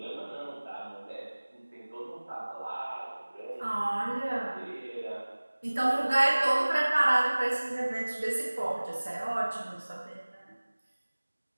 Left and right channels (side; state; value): both; inverted; correlation -1.00